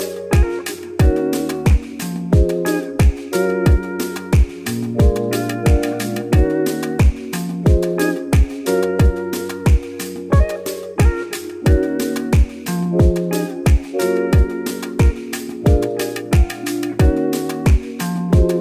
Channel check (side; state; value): both; identical; correlation 1.00